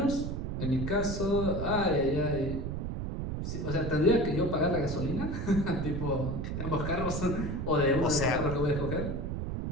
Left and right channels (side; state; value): right; noise; rumble, 3 dB below the sound